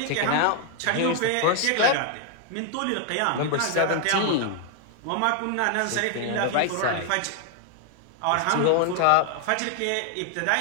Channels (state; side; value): different; both; correlation 0.00